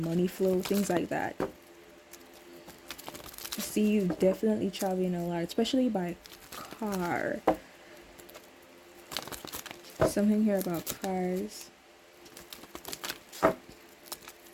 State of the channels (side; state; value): both; identical; correlation 1.00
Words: flow, things like that. I see you definitely traveling a lot, especially by car. Something here about cars.